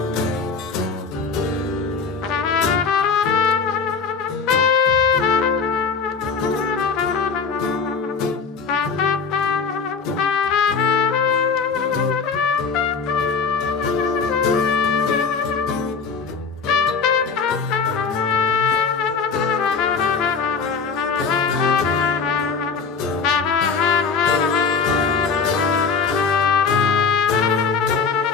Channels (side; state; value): right; quieter; 5.4 dB